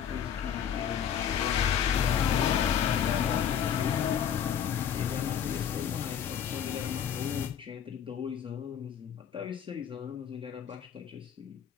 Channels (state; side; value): quieter; right; 8.7 dB